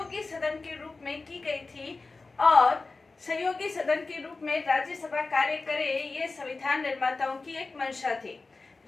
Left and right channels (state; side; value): quieter; right; 3.7 dB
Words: सदन के रूप में की गई थी और सहयोगी सदन के रूप में राज्यसभा कार्य करे, ये संविधान निर्माताओं की एक मंशा थी।